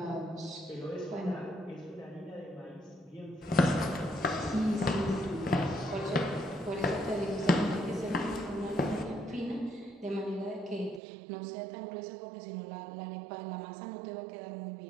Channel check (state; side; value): drops out; left; at 11.0 s